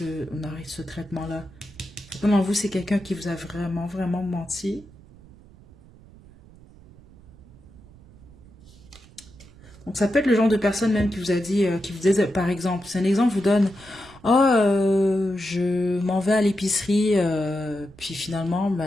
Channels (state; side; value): noise; right; rumble, 23 dB below the sound